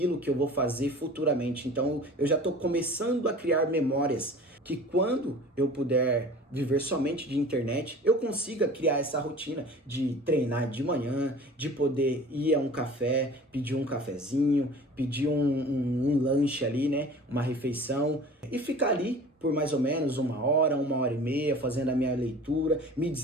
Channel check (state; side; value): normal; both; correlation 0.42